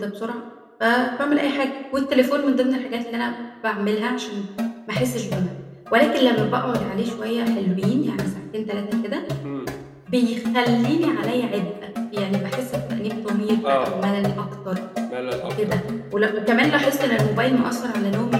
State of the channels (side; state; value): both; identical; correlation 1.00